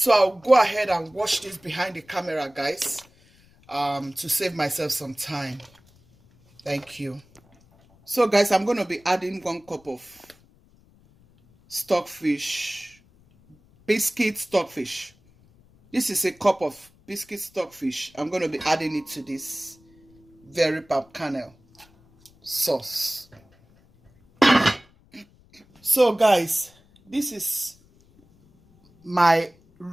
I'll go ahead and wash this behind the camera, guys, to save myself some time. Thank you. So guys, I'm going to be adding 1 cup of stockfish, biscuit stockfish. This is a cup of biscuit stockfish. I'm going to be adding it to this very palm kernel sauce. So guys, this is my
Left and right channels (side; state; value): left; noise; rumble, 30 dB below the sound